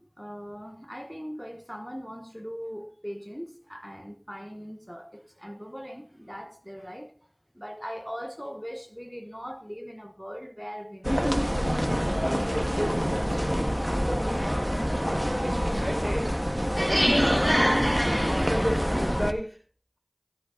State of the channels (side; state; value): both; identical; correlation 1.00